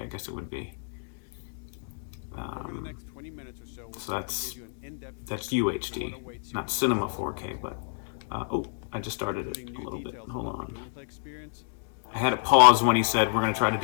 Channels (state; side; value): silent; right; digital silence